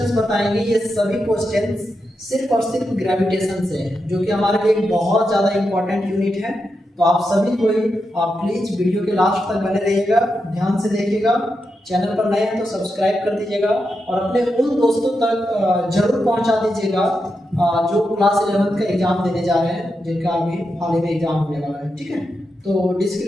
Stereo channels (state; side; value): normal; both; correlation 0.86